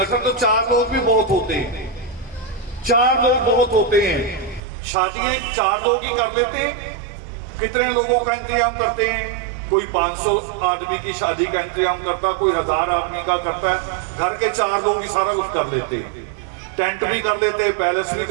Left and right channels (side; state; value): left; drops out; at 4.6 s